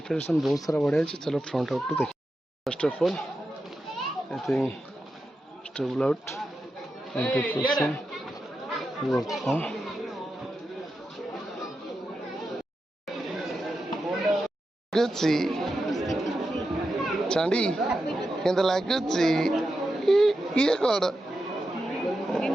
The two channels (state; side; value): normal; both; correlation 0.89